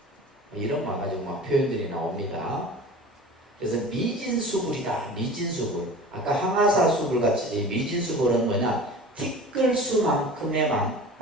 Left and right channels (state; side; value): normal; both; correlation 0.38